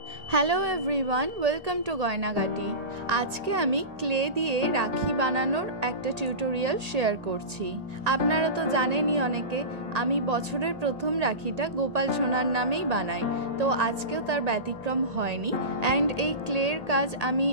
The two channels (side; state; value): left; late; 1.8 ms